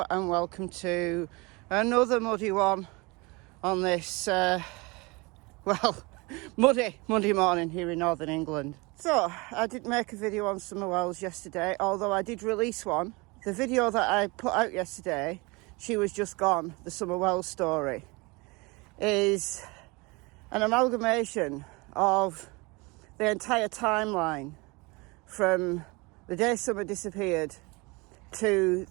and welcome to another muddy one on this, muddy Monday morning here in Northern England. So, I didn't make a video on summer wells yesterday, although I did release one. The video that I put out yesterday, She Was Just Gone, the summer wells story, is an amalgamation of the entire timeline from the day summer disappeared to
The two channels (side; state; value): left; quieter; 26.1 dB